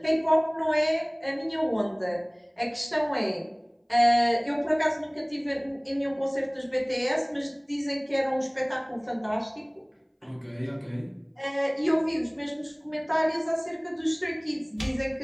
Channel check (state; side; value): identical; both; correlation 1.00